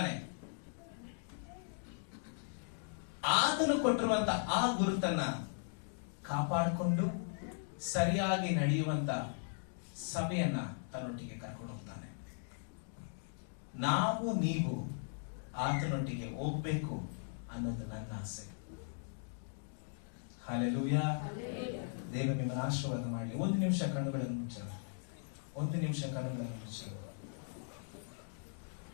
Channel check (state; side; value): silent; right; digital silence